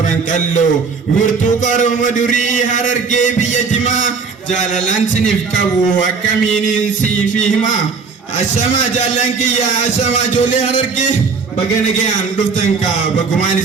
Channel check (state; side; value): quieter; left; 5.1 dB